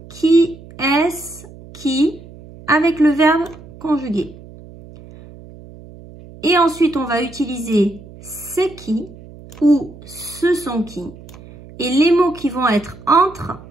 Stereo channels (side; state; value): right; noise; hum, 19 dB below the sound